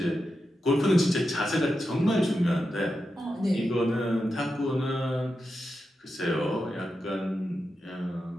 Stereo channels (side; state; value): both; normal; correlation 0.88